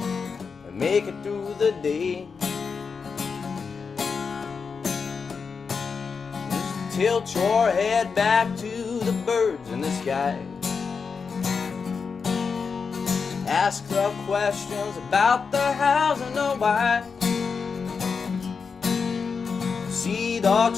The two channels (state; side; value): quieter; right; 5.4 dB